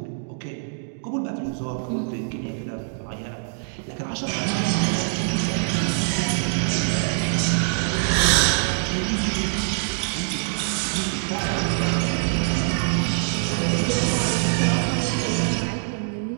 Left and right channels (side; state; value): left; silent; digital silence